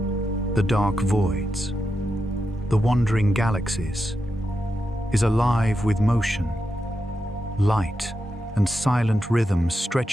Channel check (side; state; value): both; normal; correlation 0.87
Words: the dark voids, the wandering galaxies, is alive with motion, light, and silent rhythms